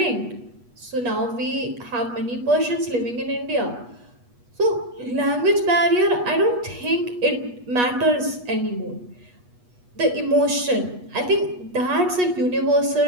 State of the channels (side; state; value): left; late; 8.2 ms